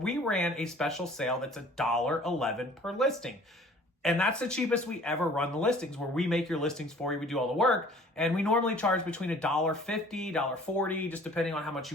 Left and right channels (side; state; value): both; normal; correlation 0.51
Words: ran a special sale that's $1.11 per listing. And that's the cheapest we ever run the listings, where we make your listings for you. We do all the work. And we normally charge between $1.50, $1.40, just depending on how much